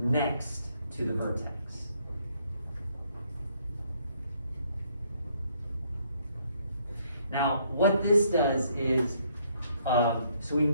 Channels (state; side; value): inverted; both; correlation -0.68